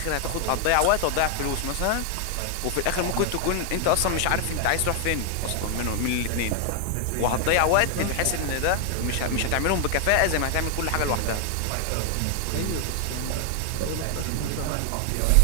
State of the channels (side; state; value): both; different; correlation 0.00